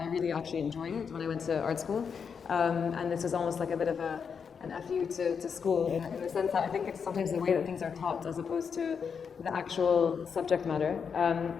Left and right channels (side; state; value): right; quieter; 6.4 dB